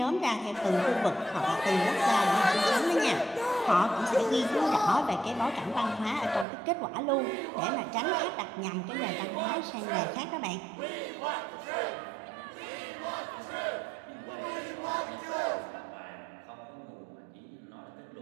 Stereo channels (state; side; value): drops out; left; at 6.5 s